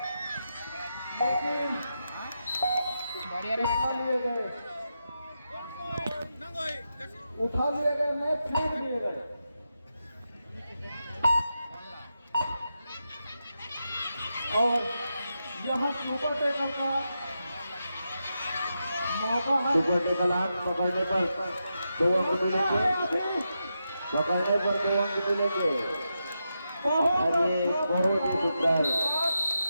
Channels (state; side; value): inverted; both; correlation -0.87